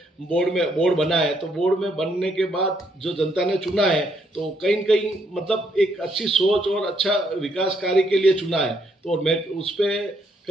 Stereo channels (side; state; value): both; normal; correlation 0.73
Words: बोर्ड बना है तो बोर्ड में बनने के बाद जो जनता ने चुना है तो कहीं न कहीं मतलब एक अच्छी सोच और अच्छा विकास कार्य के लिए चुना है। तो मैं उस पर